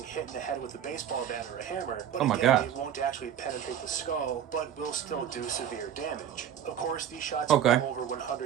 hit in the head with a baseball bat or a hammer, but Oh my again, God. it won't actually penetrate the skull, but will still do severe damage. Of course, these shots Okay. come over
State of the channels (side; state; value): left; quieter; 9.6 dB